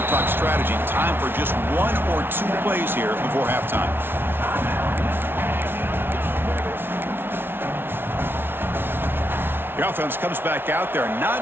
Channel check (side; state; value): left; late; 0.11 ms